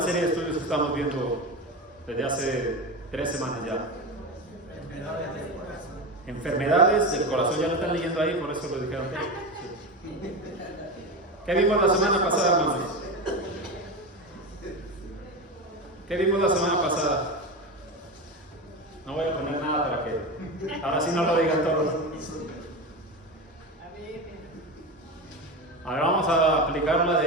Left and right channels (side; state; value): both; normal; correlation 0.22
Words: serie de estudios que estamos viendo desde hace 3 semanas ya? Enfermedades del corazón. Ya lo están leyendo ahí, por eso lo dijeron. Sí. ¿Qué vimos la semana pasada, hermanos? ¿Qué vimos la semana pasada? No voy a poner nada para que ahora sí no lo digan todos. Ahora vamos a aplicar la